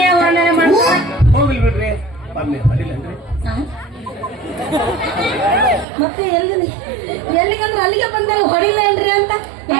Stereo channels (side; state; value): left; drops out; at 5.9 s